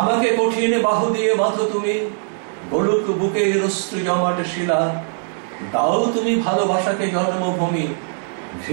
কঠিন বাহু দিয়ে বাঁধো তুমি, বলুক বুকে অশ্রু জমাট শিলা, দাও তুমি ভালোবাসাকে জন্মভূমি,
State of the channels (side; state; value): left; silent; 66 dB below the other